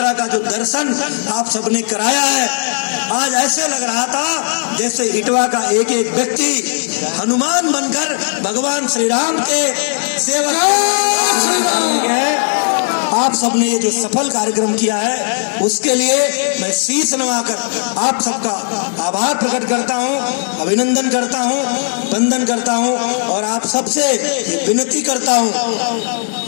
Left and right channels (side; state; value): right; silent; digital silence